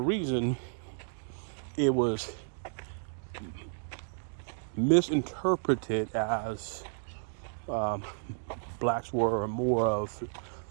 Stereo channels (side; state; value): left; silent; digital silence